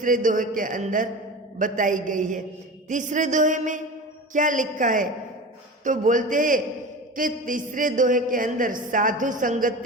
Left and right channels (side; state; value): both; normal; correlation 0.31